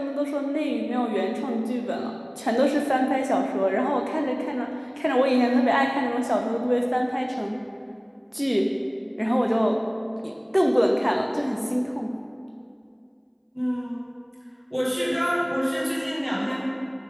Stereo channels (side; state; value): both; identical; correlation 1.00